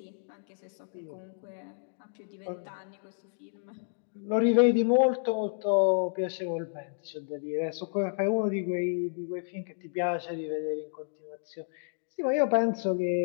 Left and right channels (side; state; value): right; silent; digital silence